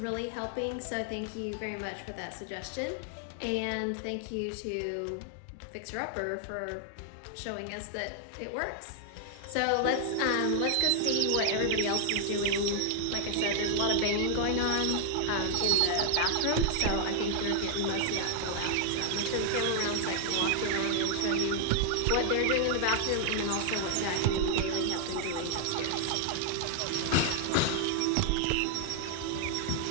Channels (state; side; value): different; both; correlation 0.00